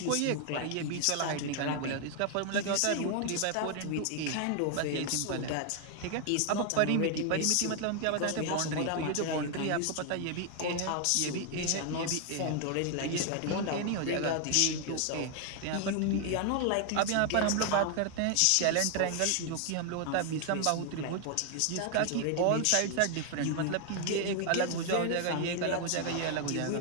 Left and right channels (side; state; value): both; different; correlation 0.00